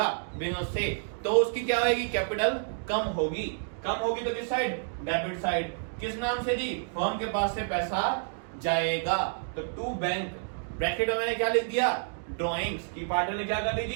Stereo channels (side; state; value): left; silent; digital silence